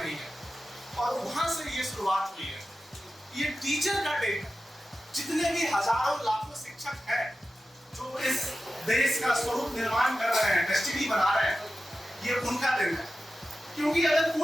है। और वहां से ये शुरुआत हुई है। ये टीचर का डे है। जितने भी हजारों लाखों शिक्षक हैं जो इस देश का स्वरूप निर्माण कर रहे हैं, डेस्टिनी बना रहे हैं, ये उनका दिन है। क्योंकि अगर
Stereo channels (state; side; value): normal; both; correlation 0.93